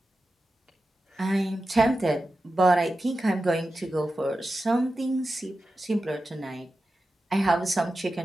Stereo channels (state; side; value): normal; both; correlation 0.92